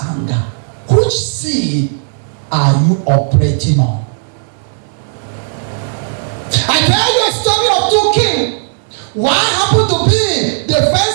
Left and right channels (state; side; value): silent; left; 70 dB below the other